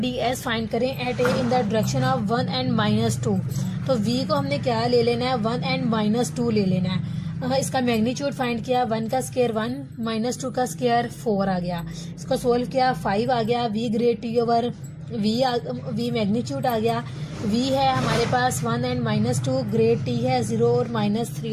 S find करें at A in the direction of 1 and -2। तो वी को हमने क्या ले लेना है, 1 एंड -2 ले लेना है। इसका मैग्नीट्यूड फाइंड किया, 1 का स्क्वायर 1 -2 का स्क्वायर 4 आ गया। इसको सोल्व किया, 5 आ गया। V grad T over we magnitude आ गया। वी है हमारे पास 1 एंड -2, ग्रेड टी है 0 और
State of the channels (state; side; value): identical; both; correlation 1.00